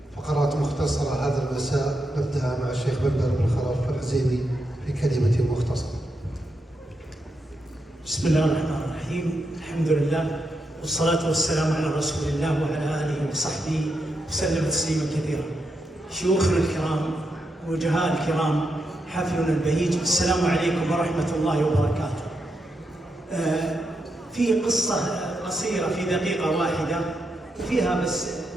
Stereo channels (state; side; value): normal; both; correlation 0.84